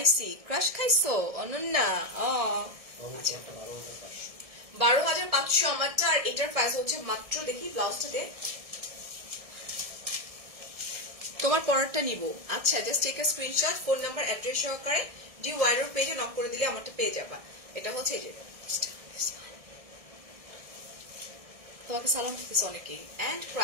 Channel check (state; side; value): late; left; 1.7 ms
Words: ক্রাশ খাইছো অনন্যা? 12,500 আমারটা। আর এটার প্রাইস হচ্ছে মাত্র, দেখি ব্লাউজটাতে, তোমার পরেরটা নিব। আচ্ছা, just take a screenshot, phone number address সহকারে ডি ওয়াইরোর পেজে নক করে দিলে আমারটা পেয়ে যাবা। এটা হচ্ছে এই যে, তোমাকে সালাম দিতেছে অনেকেই। এন্ড